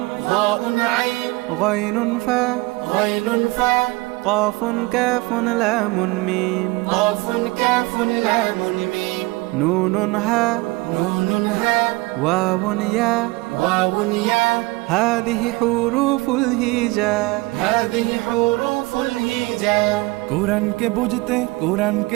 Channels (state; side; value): quieter; left; 22.7 dB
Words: ضاء عين غين فاء غين فاء قاف كاف لام ميم قاف كاف لام ميم نون هاء نون هاء واو ياء واو ياء هذه حروف الهجاء هذه حروف الهجاء কোরআনকে বুঝতে